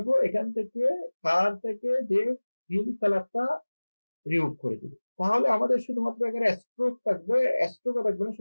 এখান থেকে কালার থেকে যে ফিল কালারটা রিমুভ করে দিব। তাহলে আমাদের শুধুমাত্র এখানে স্ট্রোক থাকবে, স্ট্রোকও থাকবে না,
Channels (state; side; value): inverted; both; correlation -1.00